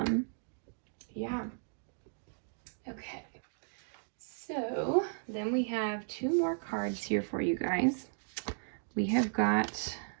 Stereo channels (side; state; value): left; silent; digital silence